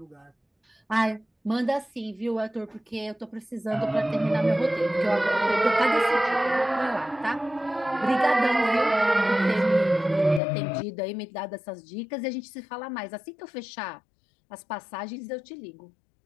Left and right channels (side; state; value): right; drops out; at 10.4 s